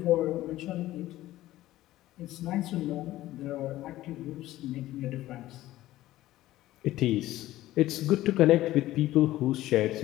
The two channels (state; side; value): quieter; right; 15.5 dB